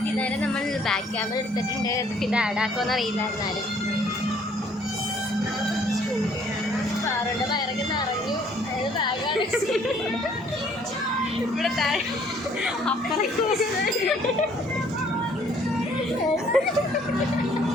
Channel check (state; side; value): normal; both; correlation 0.61